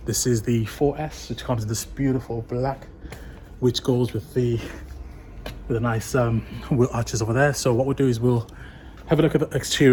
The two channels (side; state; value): both; identical; correlation 1.00